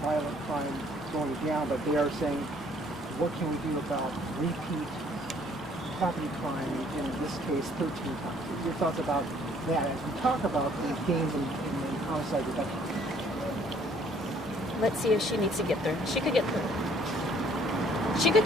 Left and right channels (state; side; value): normal; both; correlation 0.61